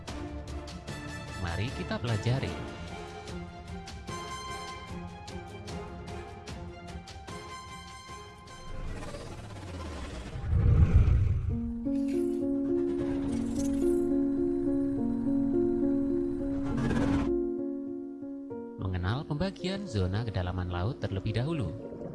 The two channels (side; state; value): both; identical; correlation 1.00